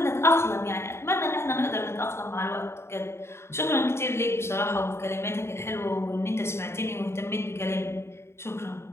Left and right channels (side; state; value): right; late; 0.12 ms